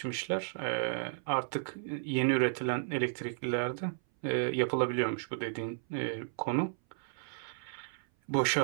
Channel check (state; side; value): silent; left; 55 dB below the other